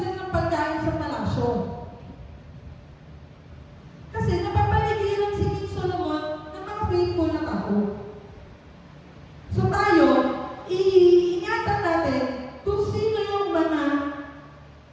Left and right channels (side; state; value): both; identical; correlation 1.00